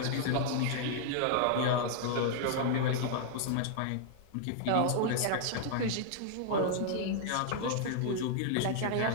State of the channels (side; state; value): both; different; correlation -0.01